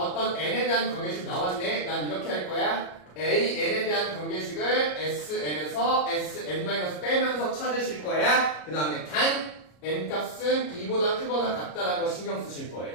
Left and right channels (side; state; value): right; late; 33 ms